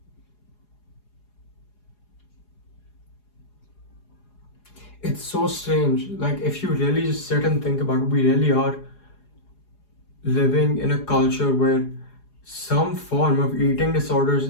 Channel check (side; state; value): right; late; 4.8 ms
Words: It's so strange. Like, if you really just sit and think about it, we really are living in a culture where some form of eating disorders